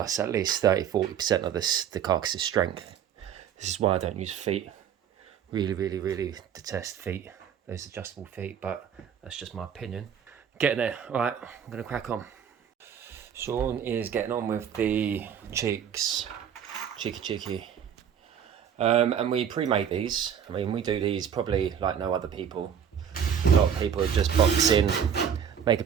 at least 30-40% of the carcass's strength. This is why I don't use feet. Really detest feet, those adjustable feet, but that's just my opinion. Getting there. All right, I'm going to crack on. Sean is getting on with the cheeks. Cheeky. And we pre-make these. I mean, we do these probably like no other people. A lot of people just box in, make a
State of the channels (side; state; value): left; quieter; 8.4 dB